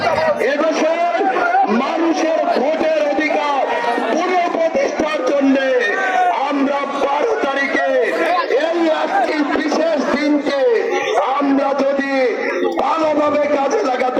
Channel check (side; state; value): both; identical; correlation 1.00